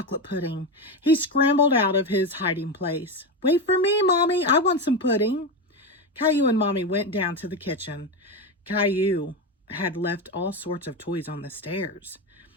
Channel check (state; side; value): normal; both; correlation 0.15